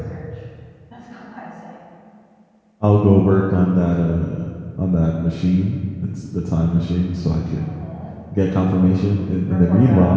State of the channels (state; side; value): identical; both; correlation 1.00